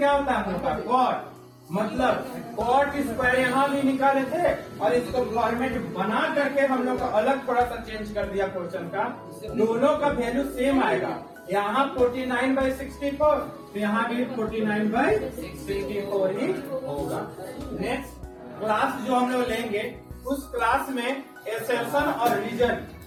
होता है हम लोग का कॉट, मतलब कॉट स्क्वायर यहाँ भी निकाले थे, और इसको फॉर्मेट बना करके हम लोग का अलग थोड़ा सा चेंज कर दिया क्वेश्चन का, दोनों का वैल्यू सेम आएगा। यहाँ 49/64, तो यहाँ भी 49/64 ही होगा। नेक्स्ट क्लास जो हम लोग लेंगे, उस क्लास में एक्सेप्शन और रीजन,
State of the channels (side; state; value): both; identical; correlation 1.00